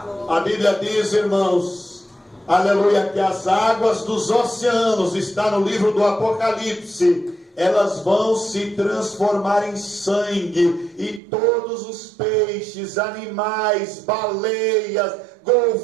A Bíblia diz, irmãos, aleluia, que as águas dos oceanos, está no livro do Apocalipse, elas vão se transformar em sangue, e todos os peixes, animais, baleias,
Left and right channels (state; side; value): drops out; left; at 11.2 s